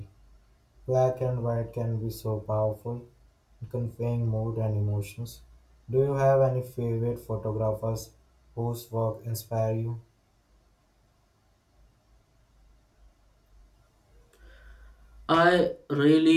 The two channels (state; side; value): identical; both; correlation 1.00